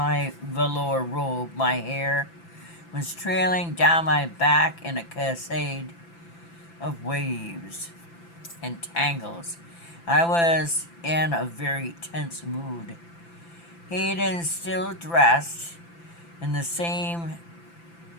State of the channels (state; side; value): late; right; 5.9 ms